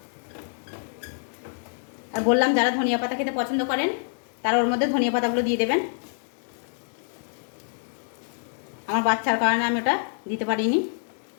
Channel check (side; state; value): right; silent; 61 dB below the other